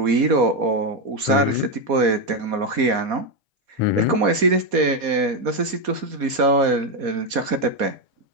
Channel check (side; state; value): left; late; 4.2 ms